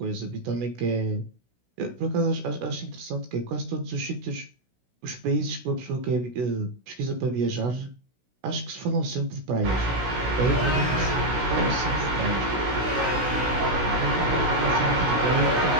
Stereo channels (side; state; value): left; late; 16 ms